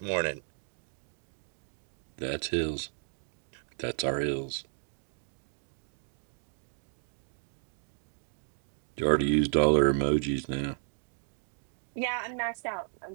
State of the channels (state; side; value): silent; left; digital silence